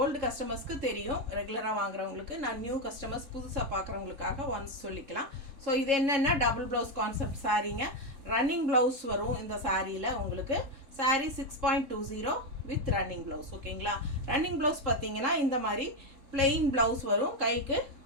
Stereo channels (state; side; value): late; left; 3.7 ms